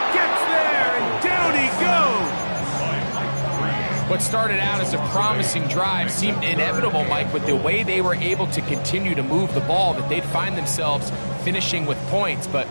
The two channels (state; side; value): inverted; both; correlation -1.00